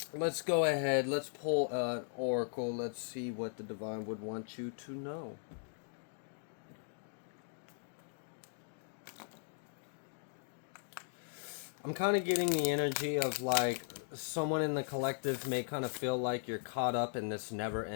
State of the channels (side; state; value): right; silent; digital silence